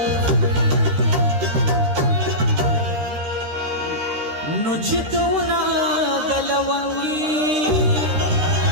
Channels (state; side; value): late; left; 13 ms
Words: نو چې دونه د لونګي